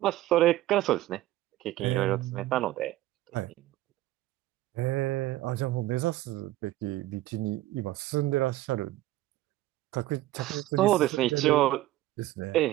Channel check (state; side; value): quieter; left; 15.8 dB